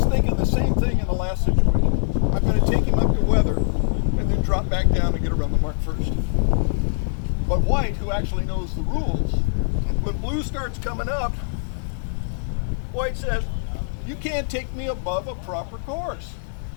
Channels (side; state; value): right; silent; digital silence